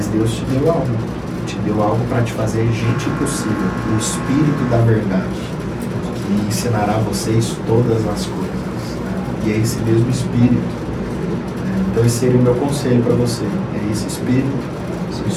Deus te deu algo para te fazer gente impossível, o Espírito da verdade, que ensinará a vocês todas as coisas. E é esse mesmo Espírito. Então esse seria o meu conselho para você. É esse Espírito, o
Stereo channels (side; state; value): both; identical; correlation 1.00